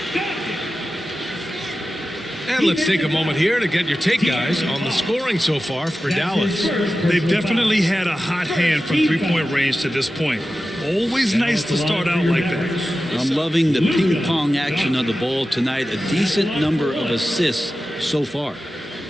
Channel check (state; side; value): normal; both; correlation 0.94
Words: And let's take a moment here to get your take, guys, on the scoring so far for Dallas. They've definitely had a hot hand from three-point range to this point. Always nice to start out like that. I'm loving the ping-pong action of the ball tonight. A decent number of assists so far.